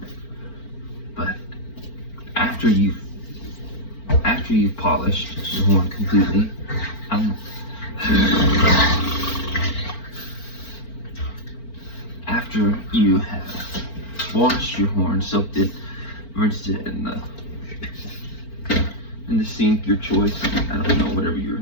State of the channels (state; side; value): late; right; 4.4 ms